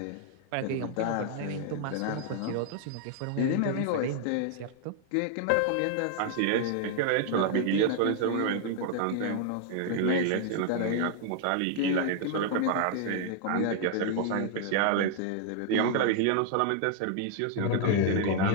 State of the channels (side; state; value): both; different; correlation 0.00